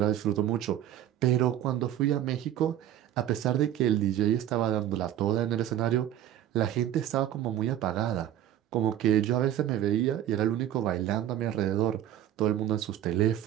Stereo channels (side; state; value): left; quieter; 11.6 dB